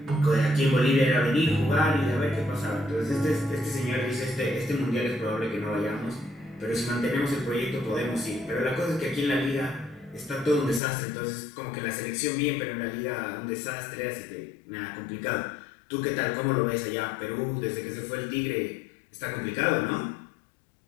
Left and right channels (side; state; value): right; drops out; at 10.8 s